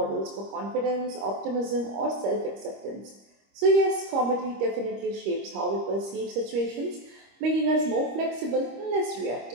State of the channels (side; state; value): left; late; 25 ms